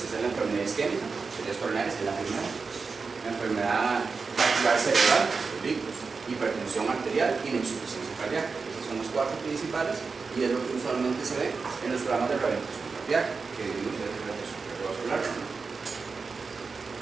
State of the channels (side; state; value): left; quieter; 4.7 dB